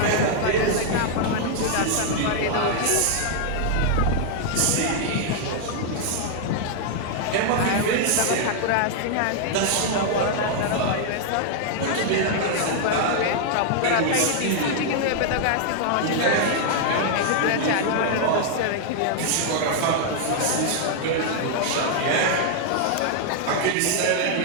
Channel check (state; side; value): different; both; correlation 0.00